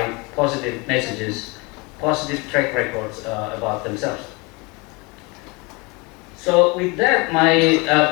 positive messages, positive track records about themselves. So with that, my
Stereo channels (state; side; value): quieter; right; 27.5 dB